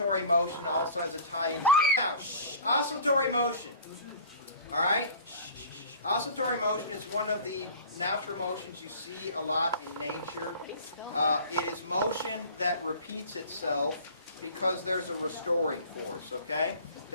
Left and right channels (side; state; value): both; inverted; correlation -0.43